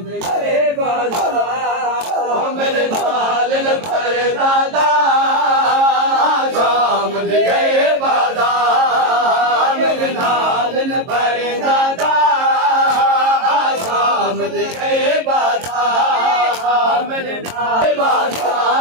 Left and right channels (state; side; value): late; left; 22 ms